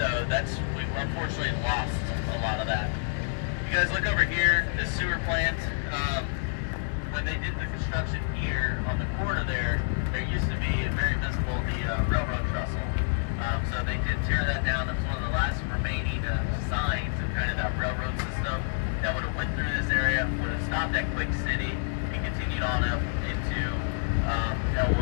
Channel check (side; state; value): right; silent; 59 dB below the other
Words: we've unfortunately lost a lot of that. You guys look over here, the sewer plant. When they did the construction here on the corner there used to be very visible the railroad trestle. So they did tear that down. It was one of the last remaining signs of kind of that railroad system that would have went through this area, would have stopped at Quick City and continued on up into